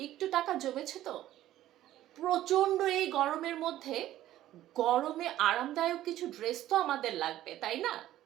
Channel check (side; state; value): left; quieter; 13.7 dB